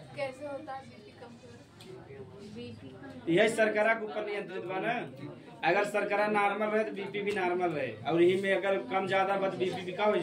कैसे होता है बीपी कम? यही शर्करा के ऊपर नियंत्रित बा ना, अगर शर्करा नॉर्मल रहे तो बीपी भी नॉर्मल रहे, और यही में अगर कम ज्यादा बस बीपी भी का हो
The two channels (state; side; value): identical; both; correlation 1.00